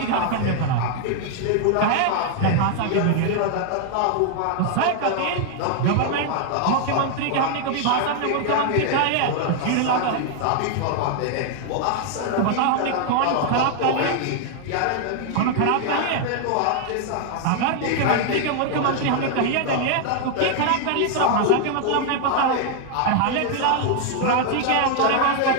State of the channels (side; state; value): both; different; correlation 0.00